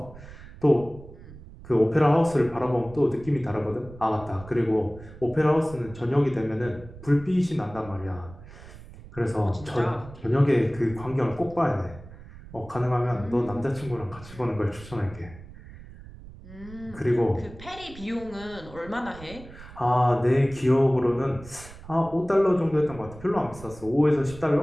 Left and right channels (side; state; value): right; noise; rumble, 17 dB below the sound